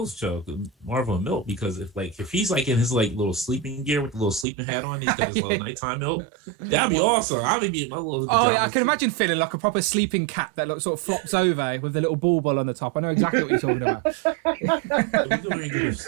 show, Marvel and Milk, because if he's like in his like little sleeping gear with the little sleeping hat on, he's got his little nighttime milk. That'd be awesome. I'll be in my little. Oh yeah, I can imagine feeling like a proper sleeping cat that sort of flops over with the little ball on the top. I know exactly what you're talking about.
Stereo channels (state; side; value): drops out; left; at 4.5 s